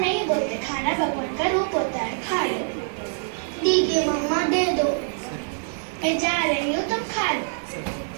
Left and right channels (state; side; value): silent; left; digital silence